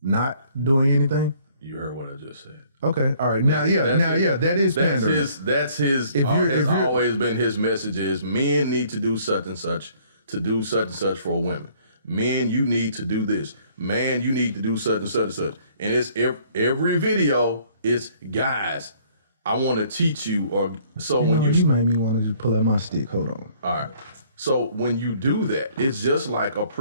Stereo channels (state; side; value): inverted; both; correlation -0.60